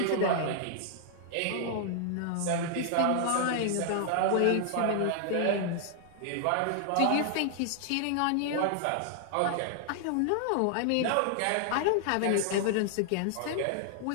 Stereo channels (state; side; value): different; both; correlation 0.00